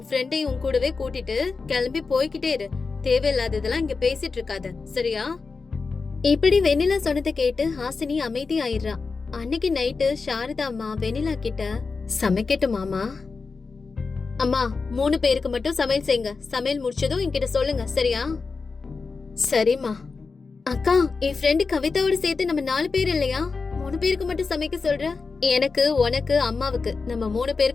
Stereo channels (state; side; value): quieter; right; 4.5 dB